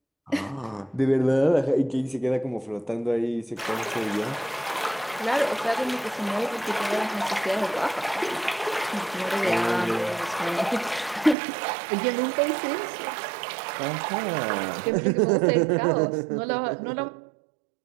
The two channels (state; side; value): drops out; left; at 11.4 s